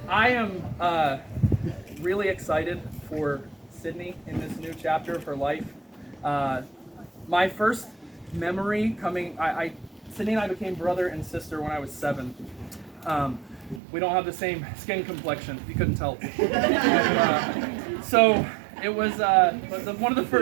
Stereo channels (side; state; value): left; drops out; at 13.8 s